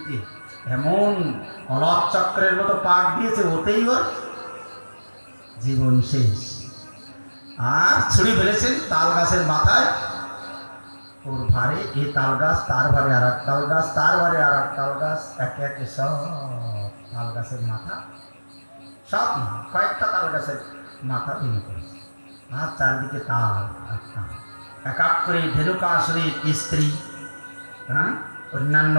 এমন অলক চক্রের মতো পাক দিয়েছে, ওতেই ওর জীবন শেষ। আর ছুরি ফেলেছেন তাল গাছের মাথায়, ওর ভারে এই তাল গাছ, তার ভারে আর এক তাল গাছ, তার ভারে আর এক তাল গাছ, একে একে সব তাল গাছের মাথা, সব না কয়েকটা তাল গাছের মাথা ভেঙে পড়েছে। আর চারিদিকে তাল এক এক করে ধেনুকাসুরের স্ত্রী, হ্যাঁ, অন্যান্য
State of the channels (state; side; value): inverted; both; correlation -1.00